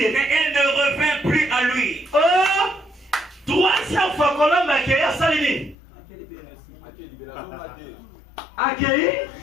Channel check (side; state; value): right; drops out; at 5.8 s